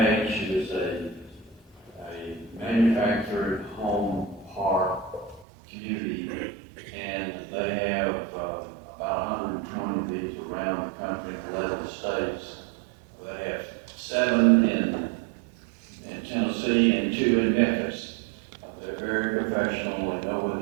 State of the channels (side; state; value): left; drops out; at 5.5 s